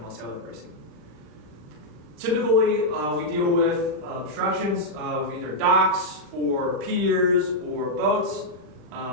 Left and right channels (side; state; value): left; late; 40 ms